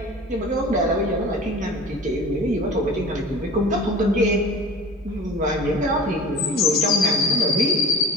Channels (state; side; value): normal; both; correlation 0.37